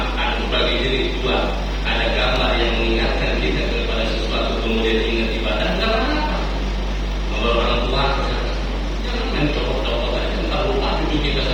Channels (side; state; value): both; identical; correlation 1.00